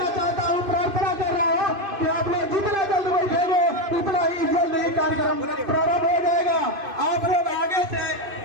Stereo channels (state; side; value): late; left; 2.5 ms